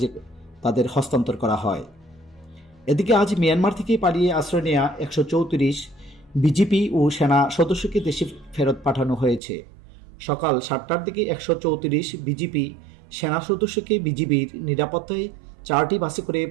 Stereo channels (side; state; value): left; drops out; at 9.4 s